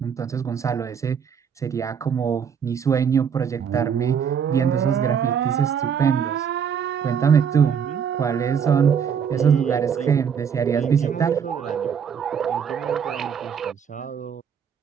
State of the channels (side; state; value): left; quieter; 7.3 dB